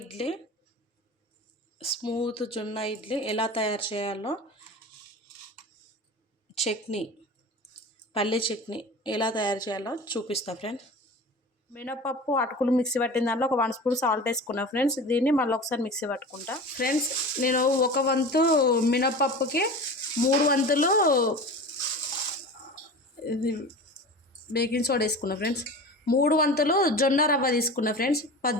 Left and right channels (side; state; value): both; normal; correlation 0.34